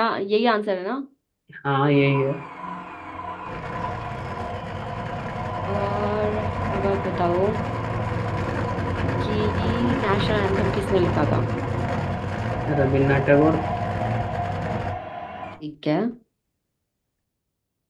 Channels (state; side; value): identical; both; correlation 1.00